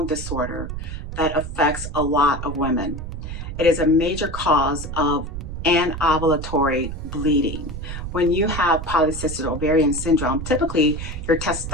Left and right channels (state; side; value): noise; right; rumble, 7 dB below the sound